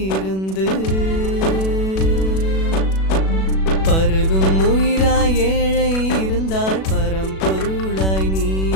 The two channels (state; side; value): late; right; 37 ms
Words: இருந்து பருகும் உயிராய் ஏழை இருந்தால் பரம்பொருளாய் நீ